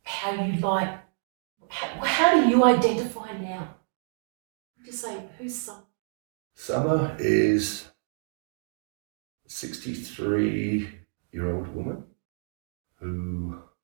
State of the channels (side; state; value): left; silent; digital silence